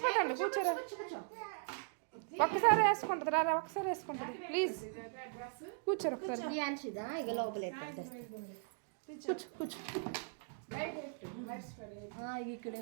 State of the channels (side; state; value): left; silent; digital silence